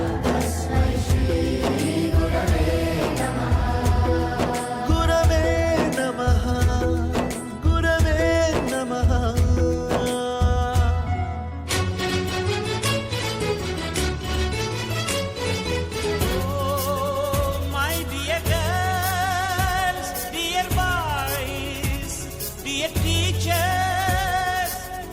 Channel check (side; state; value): both; identical; correlation 1.00